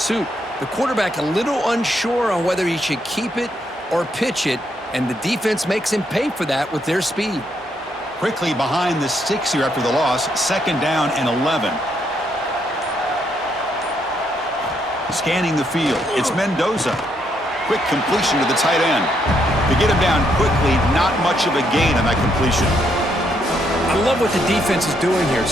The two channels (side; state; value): both; normal; correlation 0.75